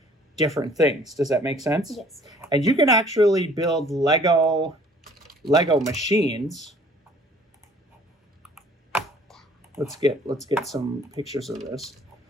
different things. Does that make sense? Yes. And you can actually build Lego machines let's get some pictures of this.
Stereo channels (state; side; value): normal; both; correlation 0.55